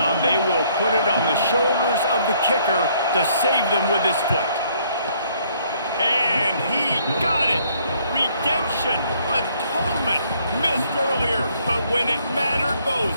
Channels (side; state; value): both; inverted; correlation -0.65